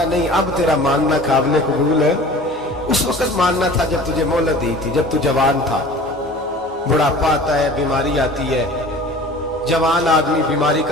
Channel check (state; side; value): normal; both; correlation 0.42